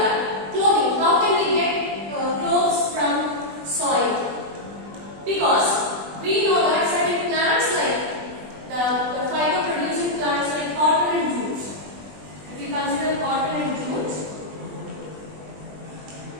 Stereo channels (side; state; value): left; late; 20 ms